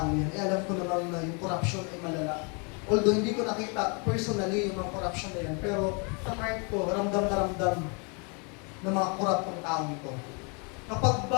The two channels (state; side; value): quieter; right; 34.1 dB